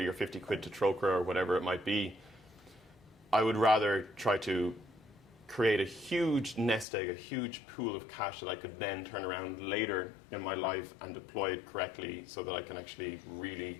or 50 quid to Troca or whatever it might be, I would rather try to create a huge nest egg, a huge pool of cash that I could then turn around later in my life and deploy it correctly so that I can actually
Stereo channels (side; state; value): right; drops out; at 6.9 s